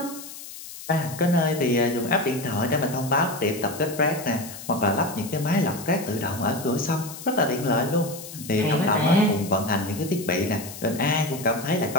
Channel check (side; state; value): left; noise; hiss, 13 dB below the sound